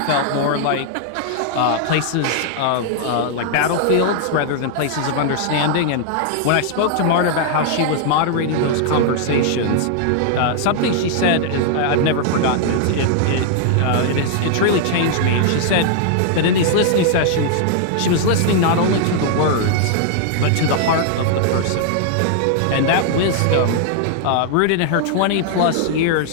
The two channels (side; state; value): both; different; correlation -0.01